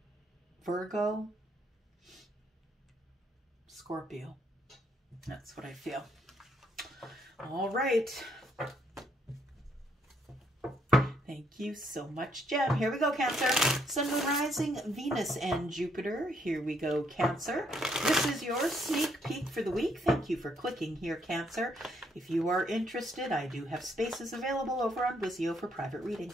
Virgo, Scorpio. That's what I feel. All right. Thank you so much, Gem. Here we go, Cancer. Sun, Moon, Rising, Venus, and Jupiter. Here we go, Cancer. This is your sneak peek for the week. Thank you for clicking here, Cancer. If you are interested, I do have spaces available over on Vizio for private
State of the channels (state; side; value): normal; both; correlation 0.71